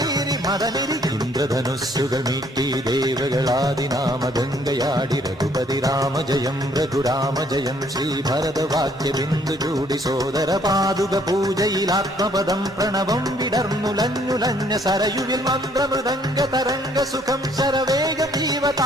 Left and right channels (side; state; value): both; normal; correlation 0.64